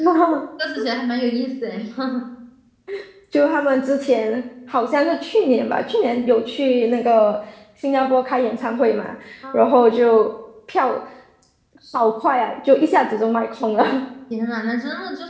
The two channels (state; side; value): identical; both; correlation 1.00